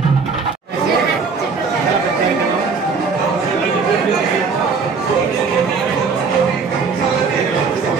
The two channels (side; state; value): left; quieter; 5.0 dB